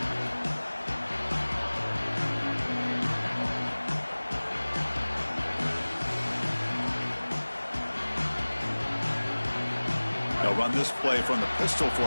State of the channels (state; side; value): inverted; both; correlation -1.00